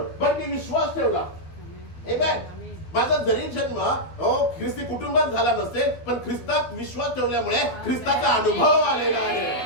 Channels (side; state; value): right; late; 12 ms